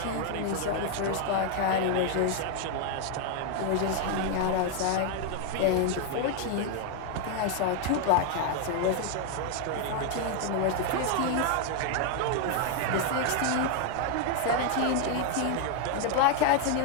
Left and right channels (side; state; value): both; different; correlation 0.00